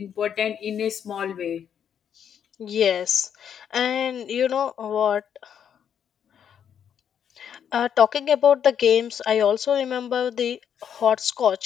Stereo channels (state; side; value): quieter; right; 8.5 dB